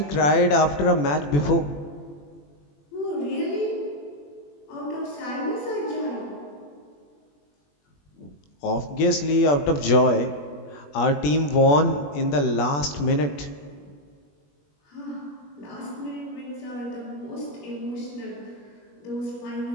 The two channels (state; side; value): late; right; 21 ms